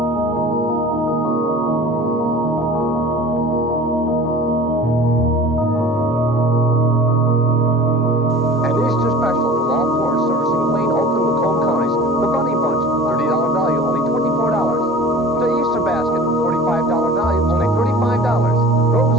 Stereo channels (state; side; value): normal; both; correlation 0.42